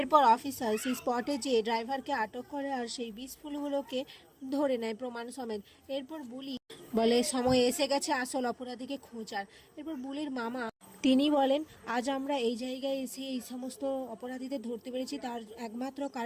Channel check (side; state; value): both; identical; correlation 1.00